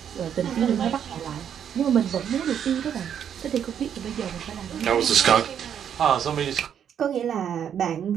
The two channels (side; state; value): left; quieter; 8.7 dB